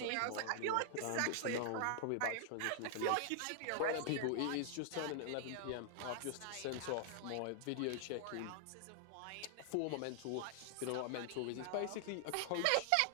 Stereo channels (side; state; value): both; different; correlation 0.00